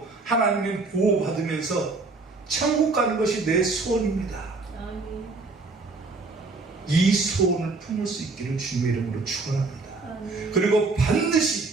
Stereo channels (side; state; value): left; quieter; 3.7 dB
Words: 하나님의 보호받으면서 천국 가는 것이 내 소원입니다. 아멘. 이 소원을 품을 수 있기를 주님의 이름으로 축원합니다. 아멘. 그리고